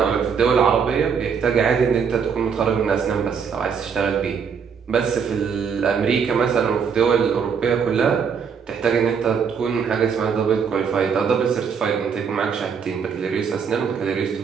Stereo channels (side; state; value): left; quieter; 6.5 dB